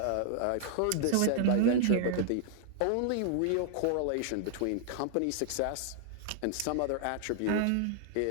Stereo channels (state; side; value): different; both; correlation 0.00